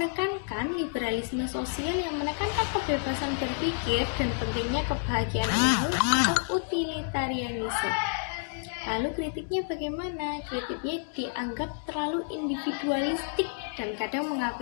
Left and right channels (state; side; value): silent; right; digital silence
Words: liberalisme sosial yang menekankan kebebasan berpikir dan pentingnya kebahagiaan umum atau utilitarianisme. Lalu kritiknya bagaimana? Kritiknya dianggap terlalu individualistik dan kadang